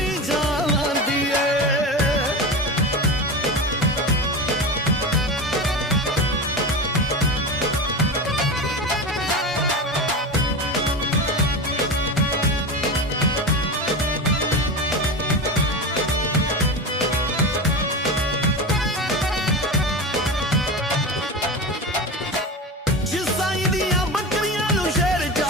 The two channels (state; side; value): normal; both; correlation 0.25